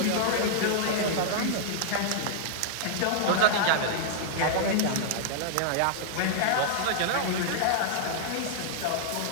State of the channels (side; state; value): both; different; correlation -0.02